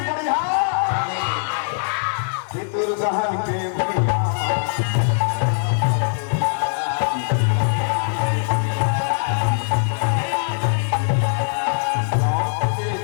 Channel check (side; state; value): right; silent; digital silence